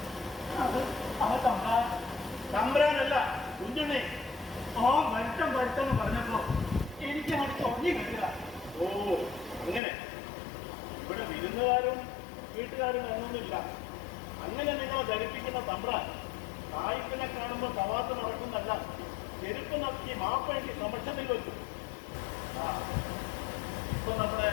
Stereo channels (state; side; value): drops out; right; at 9.8 s